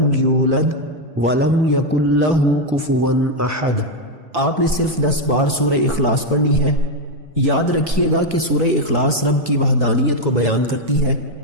یولد ولم یکن لہ کفوا احد۔ آپ نے صرف 10 بار سورہ اخلاص پڑھنی ہے۔ یاد رکھیے گا کہ سورہ اخلاص رب کی وحدانیت کو بیان کرتی ہے،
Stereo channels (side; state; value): left; late; 4.6 ms